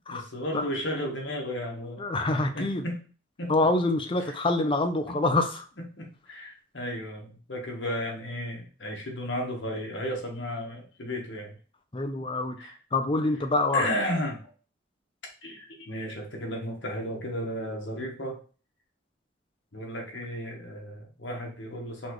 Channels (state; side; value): normal; both; correlation 0.25